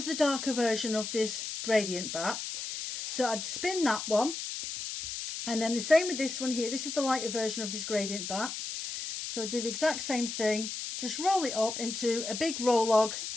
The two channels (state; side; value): noise; left; hiss, 6 dB below the sound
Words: the darker version of this gradient batt. So I'd spin that one, and then the same with this one here. This is the lighter version of this gradient batt. So I'd do the exact same thing, just roll it up into a big roll log,